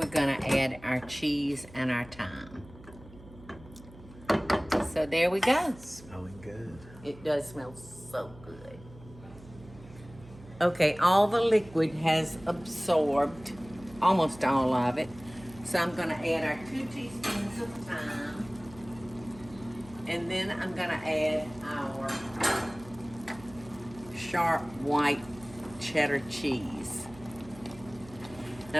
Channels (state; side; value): noise; right; hum, 20 dB below the sound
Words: gonna add our cheese and our thyme. So there we go. Smelling good. It does smell so good. Okay, all the liquid has absorbed, almost all of it. So I'm gonna add our 2 teaspoons of thyme. And then I'm gonna add our sharp white cheddar cheese. And